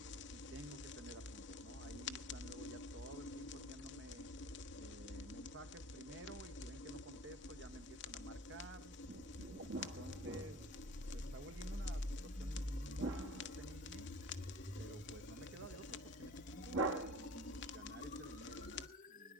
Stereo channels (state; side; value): normal; both; correlation 0.43